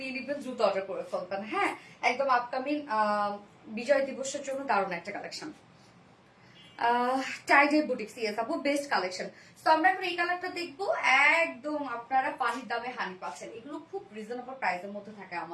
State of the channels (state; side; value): identical; both; correlation 1.00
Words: নিবেন, দ্রুত অর্ডার করে ফেলবেন। হ্যাঁ, একদম আপকামিং বিজয় দিবসের জন্য দারুণ একটা কালেকশন। টাইডে বুটিক্স, ইয়েস আপু, বেস্ট কালেকশন। তো আমরা এখন এই কালারটা দেখবো, একদম আপনারা পানির দামে হানি পাচ্ছেন। এগুলো খুব রিজনেবল প্রাইসের মধ্যে থাকে